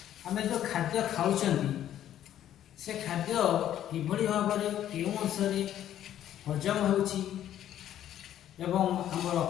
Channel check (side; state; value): right; quieter; 11.4 dB